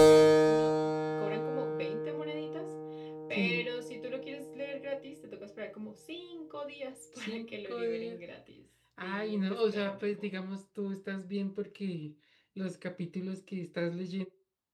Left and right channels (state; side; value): identical; both; correlation 1.00